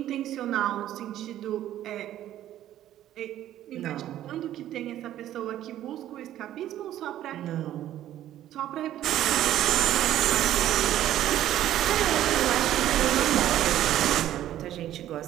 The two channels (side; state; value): left; quieter; 12.5 dB